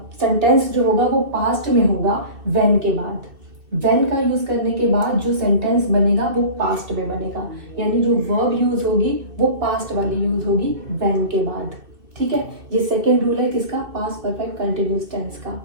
सेंटेंस जो होगा वो पास्ट में होगा व्हेन के बाद। व्हेन का यूज करने के बाद जो सेंटेंस बनेगा वो पास्ट में बनेगा, यानी जो वर्ब यूज होगी वो पास्ट वाली यूज होगी व्हेन के बाद। ठीक है, ये सेकेंड रूल है किसका, पास्ट परफेक्ट कंटिन्यूस टेंस का।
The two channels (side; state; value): left; late; 2.6 ms